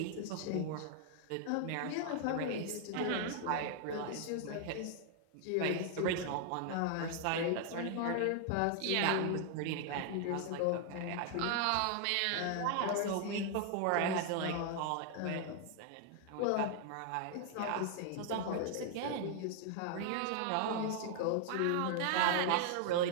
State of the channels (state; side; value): different; both; correlation 0.00